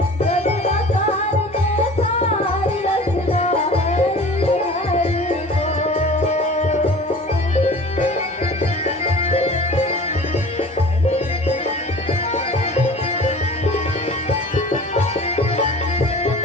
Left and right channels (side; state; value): both; normal; correlation 0.42